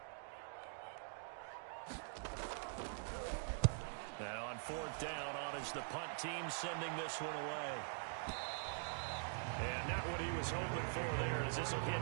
Now on 4th down, on is the punt team sending this one away. And not what he was hoping for there, as this will hit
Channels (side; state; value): left; silent; digital silence